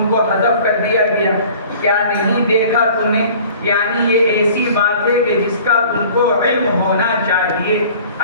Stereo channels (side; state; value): both; inverted; correlation -0.48